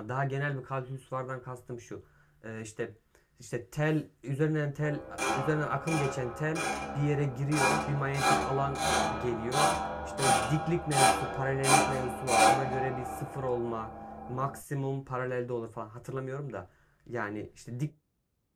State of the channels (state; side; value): identical; both; correlation 1.00